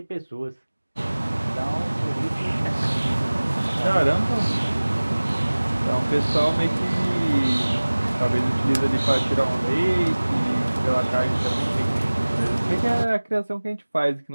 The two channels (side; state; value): both; inverted; correlation -1.00